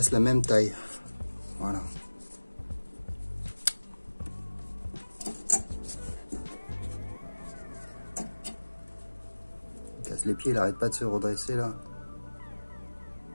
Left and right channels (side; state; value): both; inverted; correlation -1.00